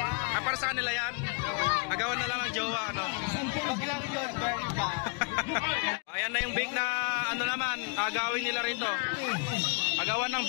Para sa kanila yan? Agawan na lang ng jowa, ano? Pag lang yun, very bad. Ayan na yung bake na ano naman, agawin nila rito. Agawan ng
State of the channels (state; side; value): quieter; right; 35.4 dB